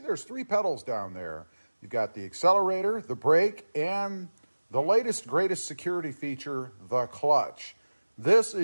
3 pedals down there. You've got the accelerator, the brake, and the latest, greatest security feature, the clutch. This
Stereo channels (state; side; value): inverted; both; correlation -1.00